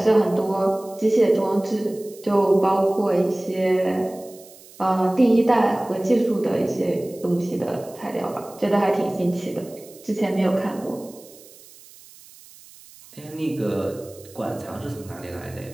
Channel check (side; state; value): right; noise; hiss, 22 dB below the sound